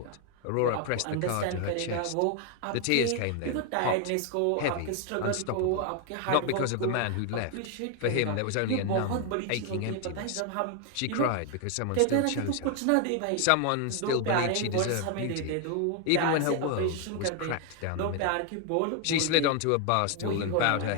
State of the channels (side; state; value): both; different; correlation 0.01